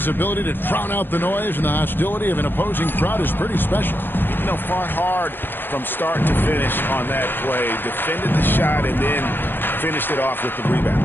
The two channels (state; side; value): late; right; 0.098 ms